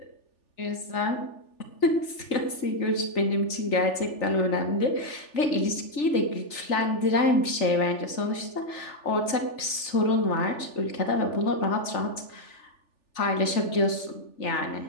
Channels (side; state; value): right; late; 3.4 ms